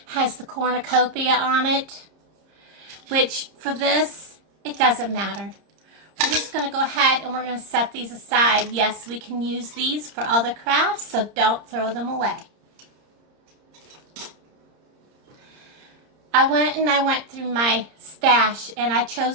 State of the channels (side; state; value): left; late; 30 ms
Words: has the cornucopia on it, which for this, it doesn't matter. We're just going to go ahead and we're going to set these aside. Yes, we can use these for other crafts, so don't throw them away. I went through my stash and I